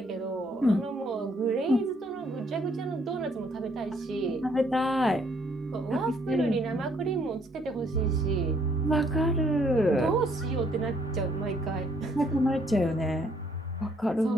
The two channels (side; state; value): both; normal; correlation 0.67